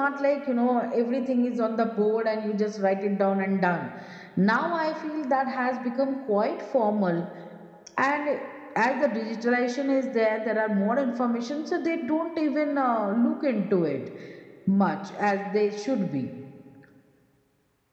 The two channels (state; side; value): identical; both; correlation 1.00